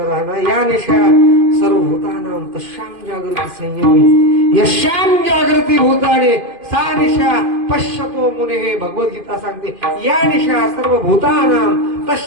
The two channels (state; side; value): late; left; 2.5 ms